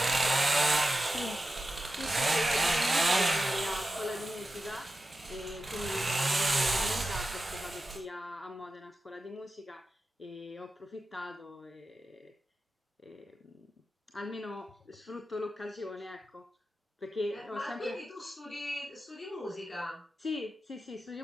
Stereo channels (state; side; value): normal; both; correlation 0.93